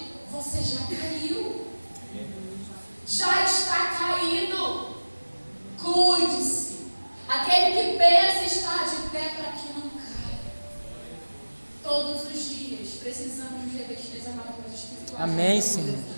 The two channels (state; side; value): inverted; both; correlation -1.00